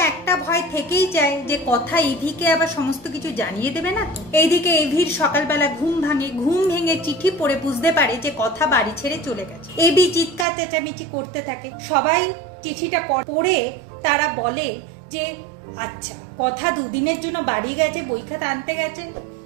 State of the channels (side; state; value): left; drops out; at 10.5 s